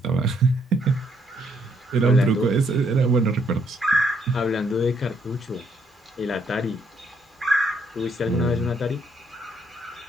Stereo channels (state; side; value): normal; both; correlation 0.71